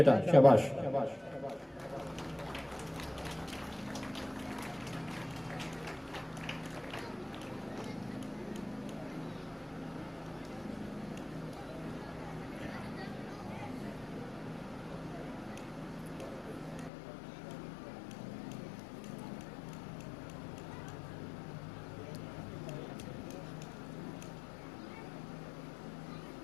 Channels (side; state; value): right; drops out; at 16.9 s